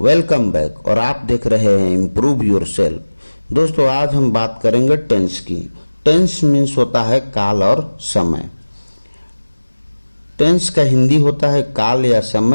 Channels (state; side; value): inverted; both; correlation -1.00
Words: welcome back. और आप देख रहे हैं इम्प्रूव योरसेल्फ। दोस्तों, आज हम बात करेंगे टेंस की। टेंस मीन्स होता है काल और समय। टेंस का हिंदी होता है काल या